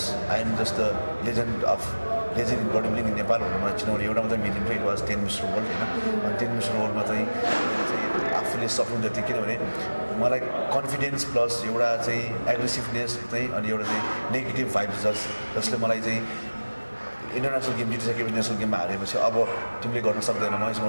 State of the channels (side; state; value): both; inverted; correlation -1.00